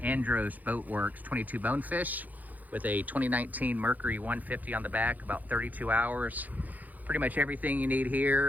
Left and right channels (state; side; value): late; left; 0.081 ms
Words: Andros Boatworks 22 Bonefish with a 2019 Mercury 150 on the back, about 32 hours. Pretty much everything you need